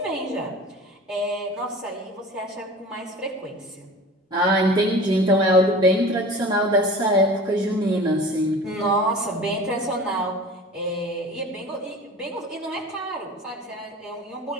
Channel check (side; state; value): both; normal; correlation 0.40